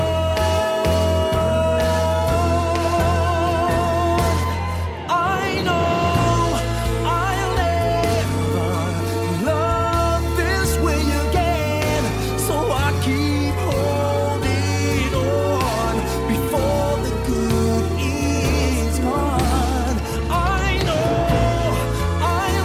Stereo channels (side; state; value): both; identical; correlation 1.00